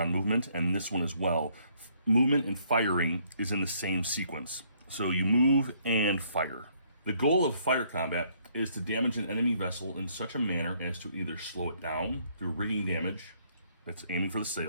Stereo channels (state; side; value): inverted; both; correlation -0.67